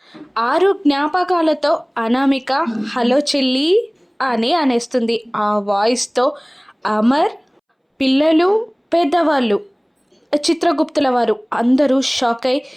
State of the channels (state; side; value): identical; both; correlation 1.00